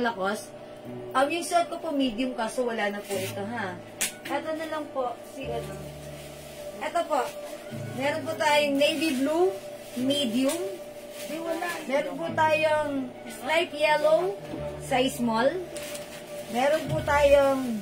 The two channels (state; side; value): identical; both; correlation 1.00